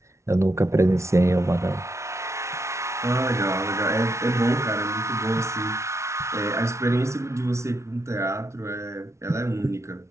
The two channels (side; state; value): left; late; 0.13 ms